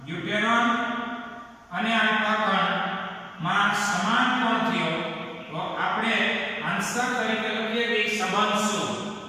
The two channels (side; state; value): both; identical; correlation 1.00